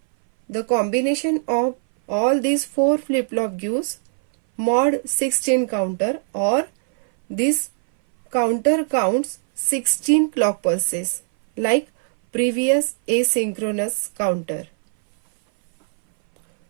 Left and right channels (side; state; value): left; silent; 61 dB below the other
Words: the combination of all these 4 flip-flop gives mod 16 counter, or this counter counts 16 clock pulses like previous asynchronous counter.